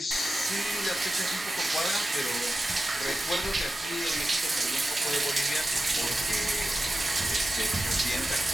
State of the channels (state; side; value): normal; both; correlation 0.93